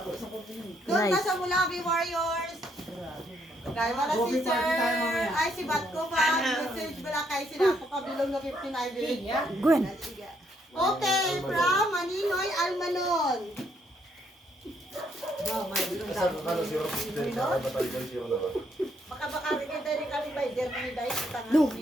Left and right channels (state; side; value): normal; both; correlation 0.72